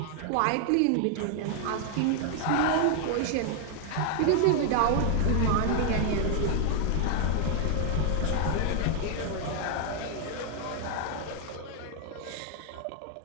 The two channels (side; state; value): both; different; correlation 0.00